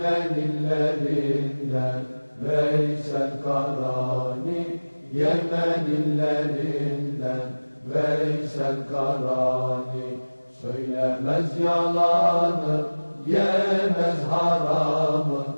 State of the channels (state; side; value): inverted; both; correlation -1.00